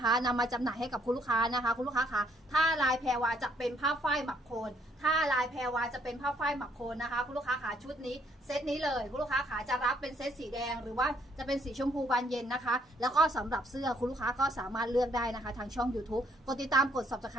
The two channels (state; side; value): normal; both; correlation 0.68